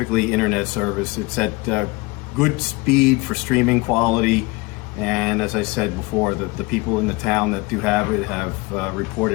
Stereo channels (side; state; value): right; quieter; 24.3 dB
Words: internet service. It's at good speed for streaming quality. And as I said before, the people in the town that do have it have